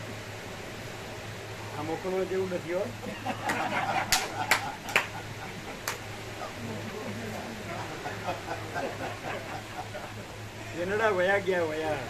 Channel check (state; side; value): identical; both; correlation 1.00